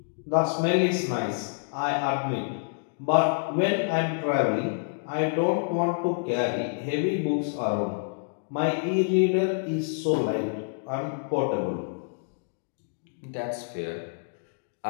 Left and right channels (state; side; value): silent; right; digital silence